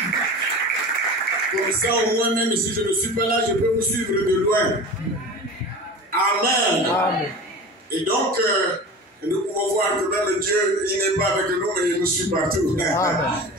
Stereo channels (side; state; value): both; normal; correlation 0.34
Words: Comme ça, au moins, même si je ne suis pas là, je peux vous suivre de loin. Amen. Amen. Et donc, nous pouvons voir que même Dieu, il n'est pas avec nous, mais il nous suit partout. Amen.